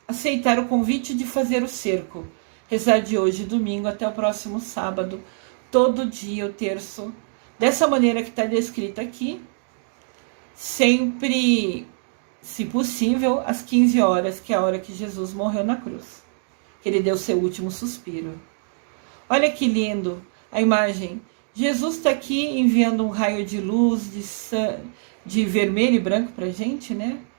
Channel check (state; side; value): silent; left; digital silence